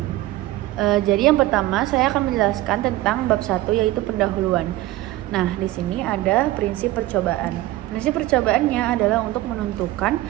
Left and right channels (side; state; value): left; quieter; 16.7 dB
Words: Jadi yang pertama saya akan menjelaskan tentang bab 1 yaitu pendahuluan. Nah, di sini ada prinsip percobaan. Prinsip percobaannya adalah untuk menentukan